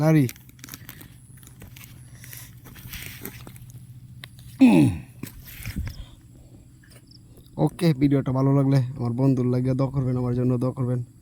lari. ওকে, ভিডিওটা ভালো লাগলে আমার বন্ধুর লাগিয়ে দোয়া করবেন, আমার জন্য দোয়া করবেন।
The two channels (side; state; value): both; identical; correlation 1.00